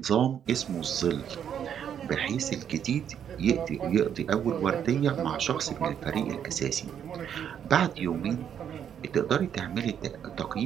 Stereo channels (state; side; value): quieter; left; 8.8 dB